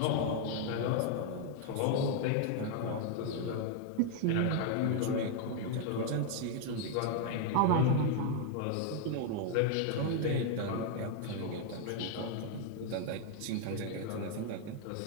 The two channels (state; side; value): different; both; correlation 0.00